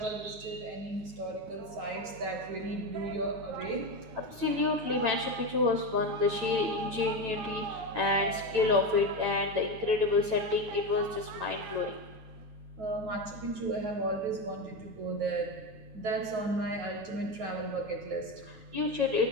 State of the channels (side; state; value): left; late; 9.0 ms